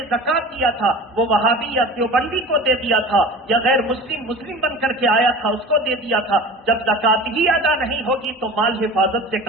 زکوٰۃ دیا تھا وہ وہابی یا دیوبندی کو دے دیا تھا، یا غیر مسلم بن کر کے آیا تھا اس کو دے دیا تھا۔ جب زکوٰۃ ہی ادا نہیں ہوگی تو مال حفاظت سے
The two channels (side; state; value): both; normal; correlation 0.37